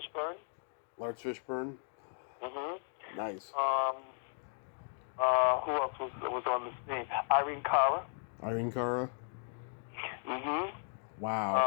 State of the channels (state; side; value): silent; right; 54 dB below the other